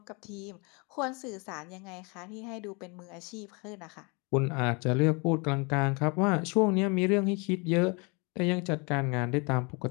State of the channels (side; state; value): right; quieter; 31.0 dB